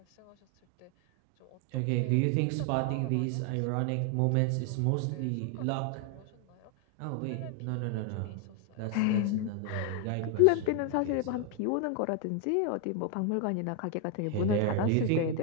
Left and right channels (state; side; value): different; both; correlation 0.01